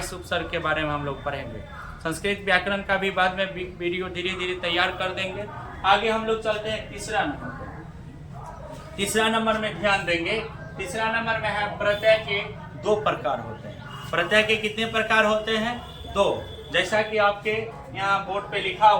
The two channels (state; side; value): identical; both; correlation 1.00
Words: उपसर्ग के बारे में हम लोग पढ़ेंगे। संस्कृत व्याकरण का भी बाद में वीडियो धीरे धीरे तैयार कर देंगे। आगे हम लोग चलते हैं तीसरा नंबर। तीसरा नंबर में ध्यान देंगे, तीसरा नंबर में है प्रत्यय के 2 प्रकार होते हैं। प्रत्यय के कितने प्रकार होते हैं? 2। जैसा कि आपके यहाँ बोर्ड पे लिखा